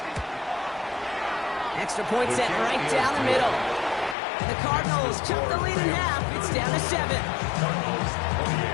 Extra point set right down the middle. And the Cardinals cut the lead in half. It's down to 7.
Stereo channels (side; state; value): right; drops out; at 4.2 s